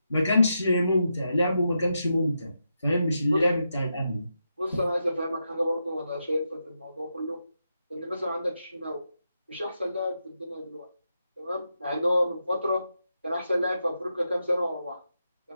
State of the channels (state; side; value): inverted; both; correlation -0.85